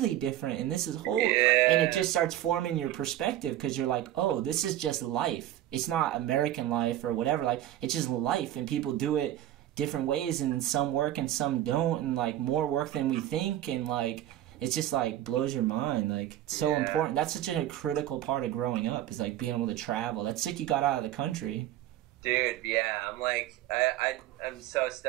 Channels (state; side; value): quieter; left; 13.1 dB